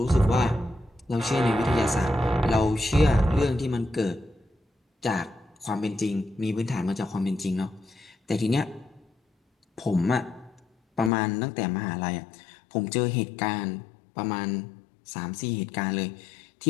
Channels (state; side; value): drops out; right; at 11.1 s